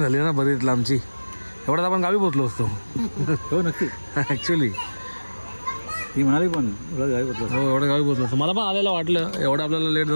झाली ना बरीच लांबची. एवढ्यात आपण गावी पोचलो असतो. हो नक्की. ॲक्च्युली ती म्हणाली पण गावी पोचलो. हो एवढं गावी पोचलो असतो. मला पण आलेलं वाटलं एवढं आपल्याला लेट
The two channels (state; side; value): inverted; both; correlation -1.00